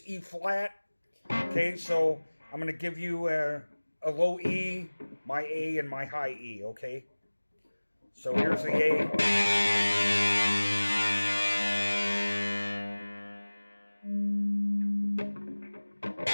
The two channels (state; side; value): inverted; both; correlation -1.00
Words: E flat. Okay, so I'm going to give you a low E, my A, and my high E, okay? So here's the A.